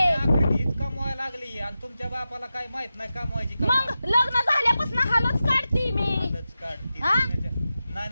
हीच कमवायला लागली आणि तुमच्या बापाला काय माहित नाही कमवायची मग लग्न झाल्यापासून हालच काढती मी. हालच काढते हा?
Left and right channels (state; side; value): inverted; both; correlation -0.92